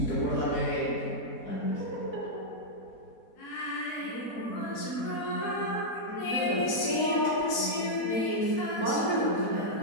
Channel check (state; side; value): late; right; 4.1 ms